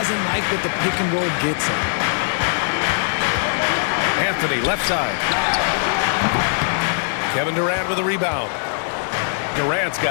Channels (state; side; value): silent; right; digital silence